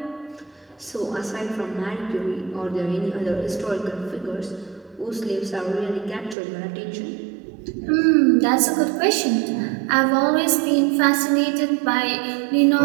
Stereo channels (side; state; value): left; drops out; at 6.4 s